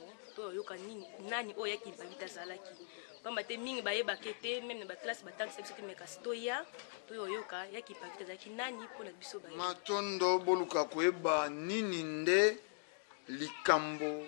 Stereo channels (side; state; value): right; silent; digital silence